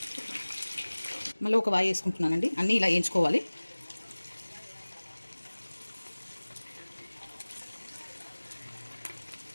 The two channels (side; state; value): both; inverted; correlation -1.00